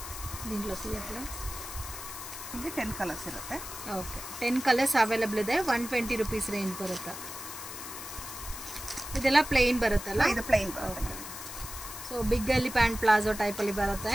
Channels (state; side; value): noise; left; hiss, 10 dB below the sound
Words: దీంట్లో తీయట్లా. ఇది 10 కలర్స్ ಇರುತ್ತೆ. ಓಕೆ. 10 ಕಲರ್ಸ್ ಅವೈಲೇಬಲ್ ಇದೆ. 120 ರೂಪೀಸ್ ರೇಂಜ್ ಬರುತ್ತೆ. ಇದೆಲ್ಲ ಪ್ಲೇನ್ ಬರುತ್ತಲ್ಲ? ಇದು ಪ್ಲೇನ್ ಬರುತ್ತೆ. ಸೊ ಬಿಗ್ ಅಲ್ಲಿ ಪ್ಯಾಂಟ್ ಪ್ಲಾಜೋ ಟೈಪ್ ಅಲ್ಲಿ ಬರುತ್ತೆ.